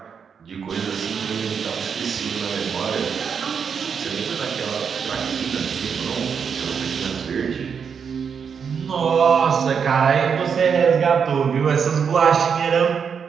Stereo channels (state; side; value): quieter; left; 6.7 dB